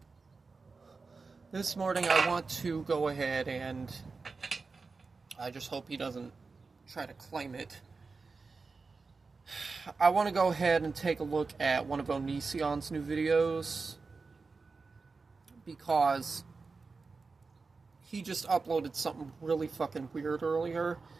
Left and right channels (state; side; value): quieter; left; 4.3 dB